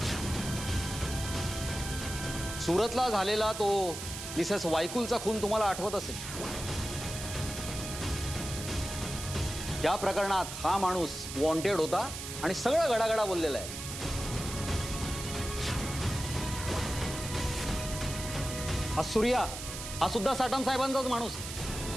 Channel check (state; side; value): noise; right; hiss, 8 dB below the sound